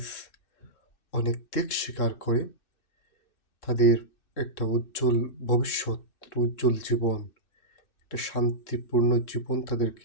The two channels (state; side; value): late; right; 2.6 ms